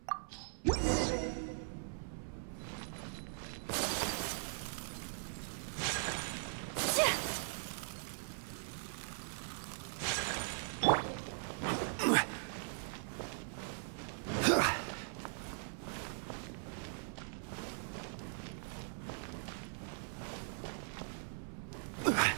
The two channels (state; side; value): silent; left; 51 dB below the other